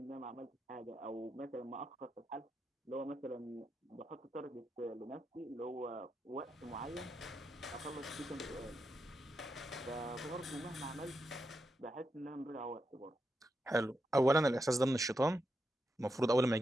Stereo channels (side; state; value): both; normal; correlation 0.85